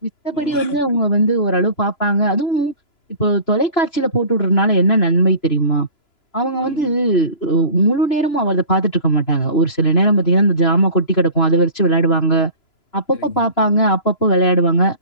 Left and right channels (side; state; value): right; late; 3.0 ms